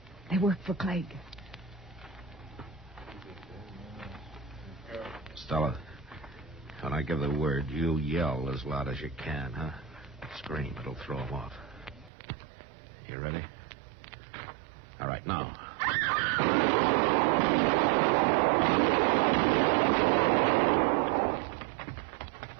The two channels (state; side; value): drops out; left; at 12.1 s